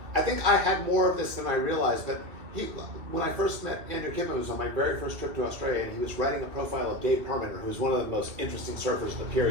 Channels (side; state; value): left; late; 2.6 ms